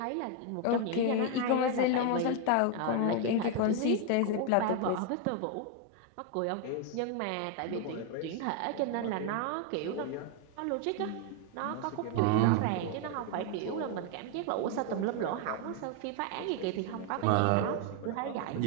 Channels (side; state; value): both; different; correlation 0.01